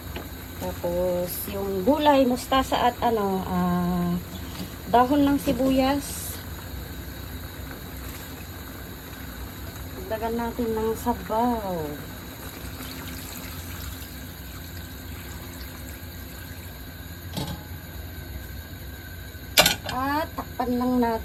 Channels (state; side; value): identical; both; correlation 1.00